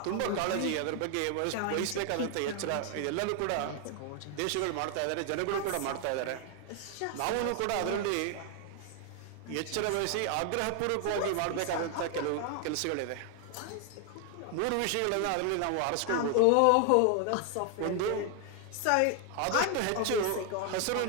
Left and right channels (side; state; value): both; different; correlation 0.00